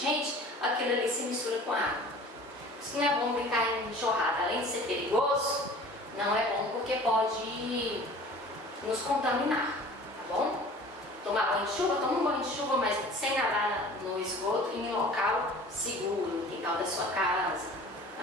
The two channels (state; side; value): normal; both; correlation 0.44